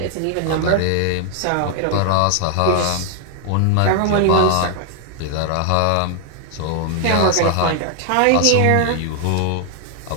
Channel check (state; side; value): different; both; correlation 0.00